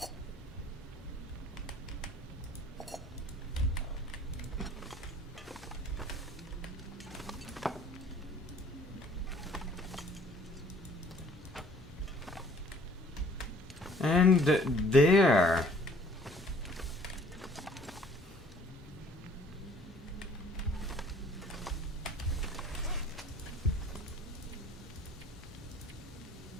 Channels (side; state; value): both; normal; correlation 0.56